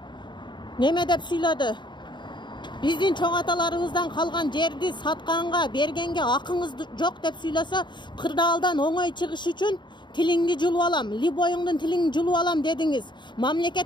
Неме деп сүйлөдү? Биздин чоң аталарыбыздан калган жерди сатканга, бергенге акыңыз жок деп сүйлөсө, кырдаалдан оңой чыгыш үчүн тилиңди жулуп алам, либоюңдун тилиңди жулуп алам дедиңиз.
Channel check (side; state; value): right; late; 0.22 ms